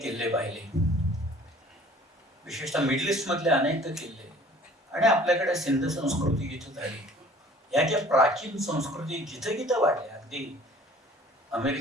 पाहिले, विशेषतः मिडल ईस्ट मधले अनेक किल्ले, आणि आपल्याकडे सिंध संस्कृती जिथं झाली, या ज्या प्राचीन संस्कृती जिथं जिथं वाढल्या, अगदी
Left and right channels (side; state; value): both; normal; correlation 0.51